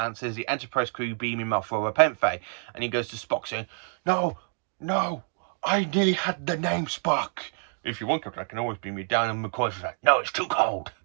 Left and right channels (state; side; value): silent; left; 60 dB below the other